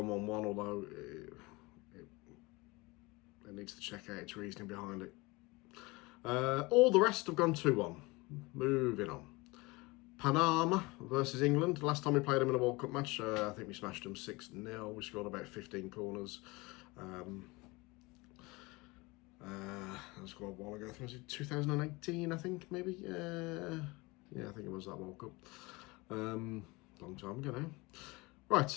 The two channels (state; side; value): quieter; right; 24.0 dB